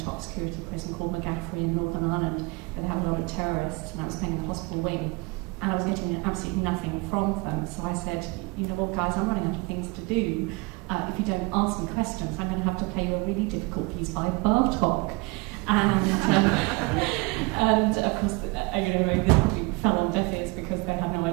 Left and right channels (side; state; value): left; quieter; 26.6 dB